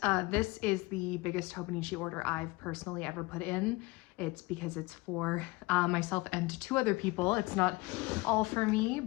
this is the biggest Hobonichi order I've personally ever put in. It's because it's for myself and two other people. It's not all for me,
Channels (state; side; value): quieter; right; 22.7 dB